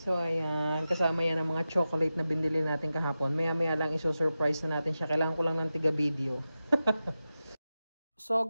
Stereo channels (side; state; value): both; inverted; correlation -0.93